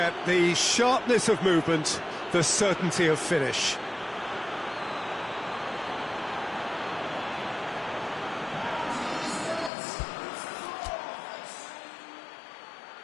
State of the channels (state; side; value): drops out; right; at 9.7 s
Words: the sharpness of movement, the certainty of finish.